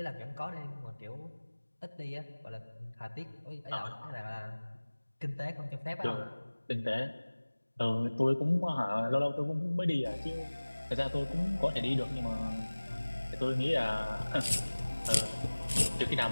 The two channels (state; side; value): inverted; both; correlation -1.00